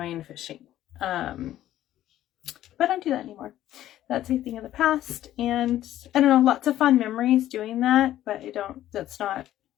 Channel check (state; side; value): quieter; right; 13.1 dB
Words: fishing. But I don't do that anymore. That's a thing of the past, and I don't know, lots of fun memories doing that, but that's